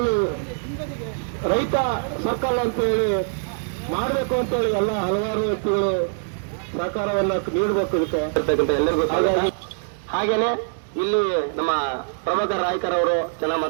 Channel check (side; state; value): left; silent; digital silence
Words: ರೈತ ಸರ್ಕಲ್ ಅಂತ ಹೇಳಿ ಮಾಡಬೇಕು ಅಂತ ಹೇಳಿ ಎಲ್ಲ ಹಲವಾರು ವ್ಯಕ್ತಿಗಳು ಸಹಕಾರವನ್ನ ನೀಡಬೇಕು ಇದಕ್ಕೆ ಎಲ್ಲರಿಗೂ. ಹಾಗೇನೆ ಇಲ್ಲಿ ನಮ್ಮ ಪ್ರಭಾಕರ್ ನಾಯ್ಕರ್ ಅವರು ಚೆನ್ನಾಗಿ